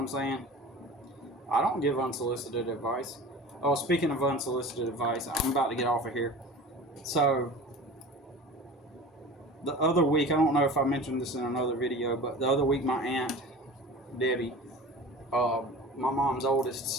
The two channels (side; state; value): both; normal; correlation 0.37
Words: saying? I don't give unsolicited advice. Oh, speaking of unsolicited advice, I'm about to get off of here. So, the other week, I don't know if I mentioned this in another video, but the other week my aunt, Debbie, my mom's oldest